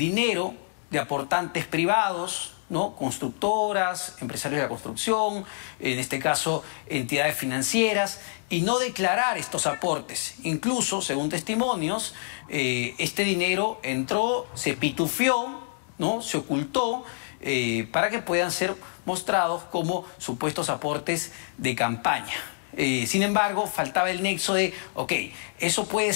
de aportantes privados, ¿no? Constructoras, empresarios de la construcción, en este caso entidades financieras, y no declarar estos aportes. Incluso, según testimonios, este dinero entró, se pitufió, ¿no? Se ocultó para que puedan ser mostrados como supuestos aportes de campaña. Sin embargo, faltaba el nexo de, ok, eso puede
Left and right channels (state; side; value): silent; right; digital silence